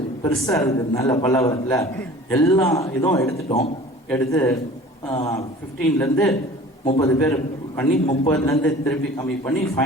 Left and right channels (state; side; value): normal; both; correlation 0.44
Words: பெருசாக இருக்கிறதுனால பல்லாவரத்தில் எல்லா இதுவும் எடுத்து 15லேருந்து 30 பேர் பண்ணி 30லேருந்து திருப்பி கம்மி பண்ணி